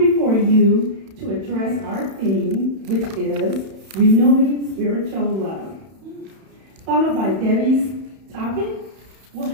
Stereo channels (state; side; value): late; left; 31 ms